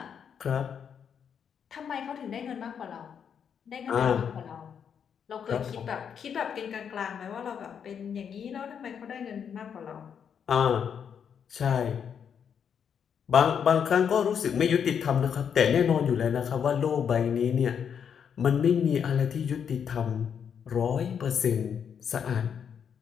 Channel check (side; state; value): right; quieter; 7.6 dB